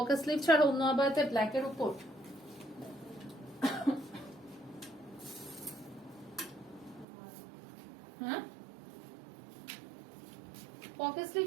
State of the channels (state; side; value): drops out; left; at 7.1 s